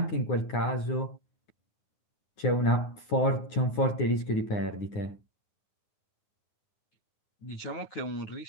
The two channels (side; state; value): right; late; 9.6 ms